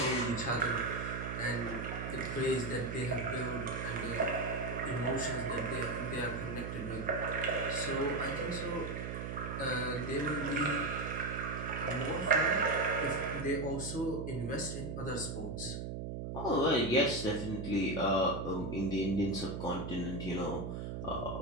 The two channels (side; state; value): right; noise; hum, 5 dB below the sound